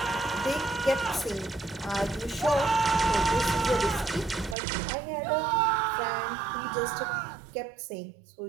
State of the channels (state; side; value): drops out; left; at 4.5 s